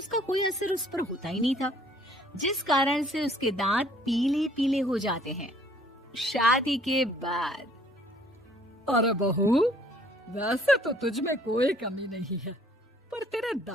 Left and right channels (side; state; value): both; normal; correlation 0.59